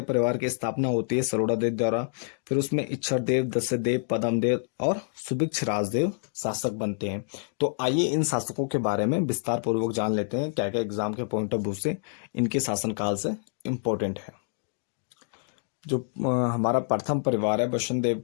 परिवार की स्थापना होती है सरोड़ा देव द्वारा। फिर उसमें इच्छर देव, दस्य देव, पदम देव और सुभिक्ष राजदेव शासक बनते हैं। तो आइए इन शासकों के बारे में विस्तार पूर्वक जान लेते हैं, क्या क्या एग्जाम के पॉइंट ऑफ व्यू से इनके शासनकाल से इम्पोर्टेंट है। जो हमारा प्रथम परिवार है, बसंत देव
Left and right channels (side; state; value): right; silent; digital silence